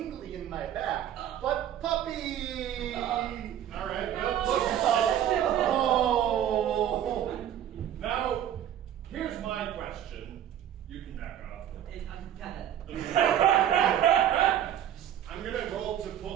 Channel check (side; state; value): left; quieter; 10.7 dB